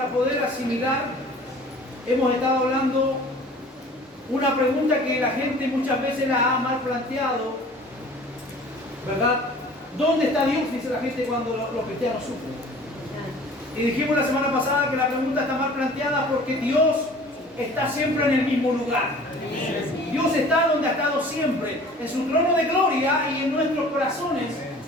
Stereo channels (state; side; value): normal; both; correlation 0.47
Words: poder asimilar. Hemos estado hablando una pregunta que la gente muchas veces la ha mal planteado, ¿verdad? ¿Dónde está Dios? Dice la gente cuando los cristianos sufren. Y dijimos la semana pasada que la pregunta está mal planteada porque Dios está siempre en el mismo lugar. Dios está donde ha estado siempre, en su trono de gloria y en nuestros corazones